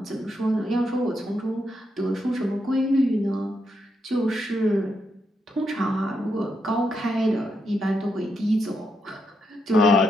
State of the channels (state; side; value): normal; both; correlation 0.81